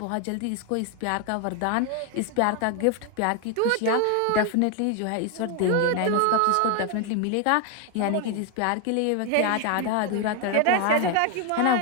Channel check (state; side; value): different; both; correlation 0.01